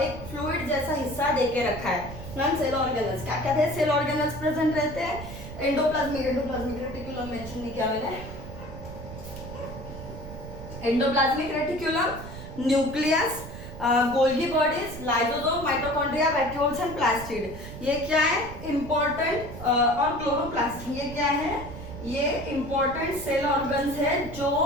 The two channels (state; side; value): noise; right; rumble, 12 dB below the sound